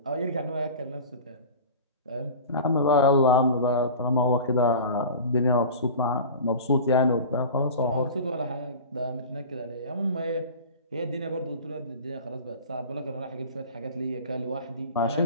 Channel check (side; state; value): both; inverted; correlation -0.36